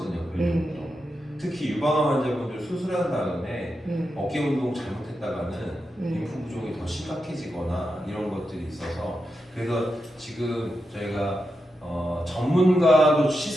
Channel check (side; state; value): both; normal; correlation 0.88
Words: 근력 운동. 특히 유방암 환자분들 수술한 다음에 어깨 운동 잘못했다가는 림프 부종이 더 심각해지거나 이런 것들이 있어서 그래서 지금 저희가 전문가도